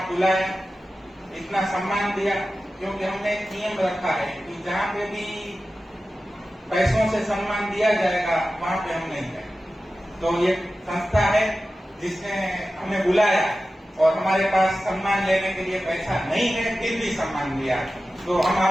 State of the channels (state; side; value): normal; both; correlation 0.94